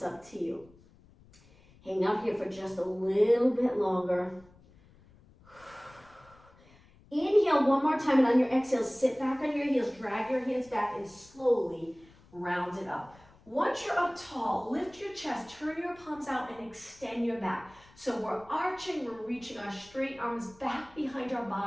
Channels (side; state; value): left; noise; rumble, 26 dB below the sound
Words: up to you. Hang out here for just a little bit longer. Inhale one more time, and on your exhale, sit back on your heels, drag your hands back, and slowly round it up. Once you're up tall, lift your chest, turn your palms out, and extend your back. So we're arching, we're reaching our straight arms back behind our